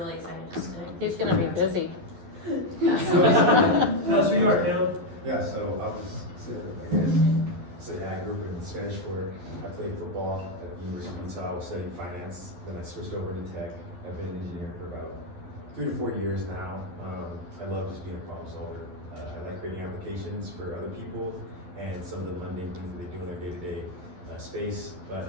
excited just to. He's going to be busy. Tell us who you are, Caleb. Yeah, so I'll just say, I grew up in Spanish Fork. I played football at the University of Utah. I was studying finance. Then I switched over to tech. I've been an engineer for about 3 to 4 years now. I love just being a problem solver. I like creating applications for other people and some of the mundane things that they do in their day-to-day space. But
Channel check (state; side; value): late; left; 11 ms